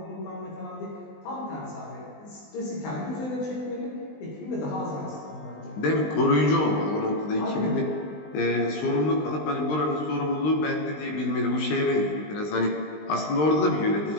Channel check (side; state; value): right; late; 20 ms